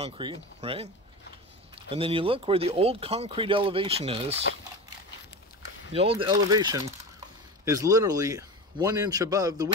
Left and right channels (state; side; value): normal; both; correlation 0.27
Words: right? And then you look where the old concrete elevation is. The old elevation is literally 1 inch above the